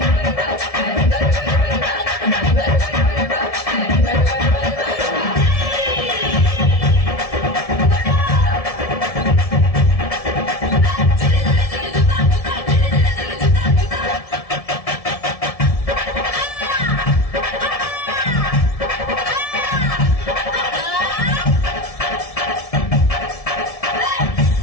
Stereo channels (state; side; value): late; right; 1.7 ms